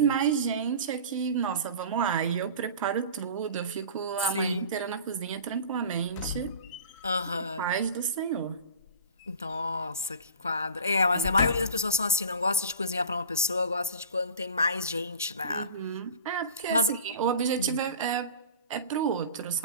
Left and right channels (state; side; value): inverted; both; correlation -0.38